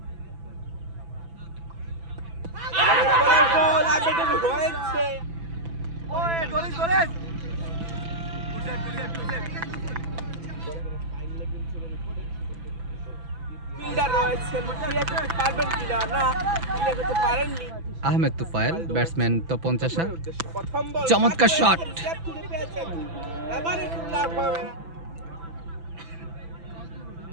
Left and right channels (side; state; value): left; late; 6.0 ms